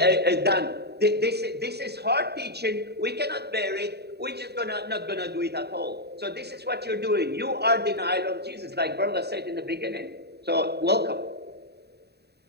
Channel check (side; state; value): left; late; 0.48 ms